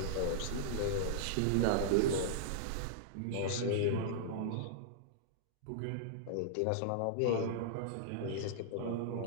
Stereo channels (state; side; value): different; both; correlation -0.02